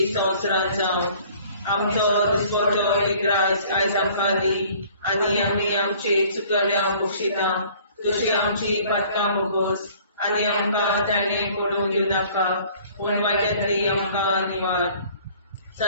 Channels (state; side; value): inverted; both; correlation -0.53